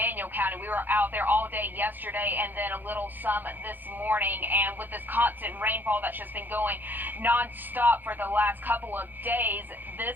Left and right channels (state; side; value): late; left; 0.089 ms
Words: County. We were out there all day yesterday and then a little some this morning. And with this constant rainfall that's just been going nonstop for the last couple of days,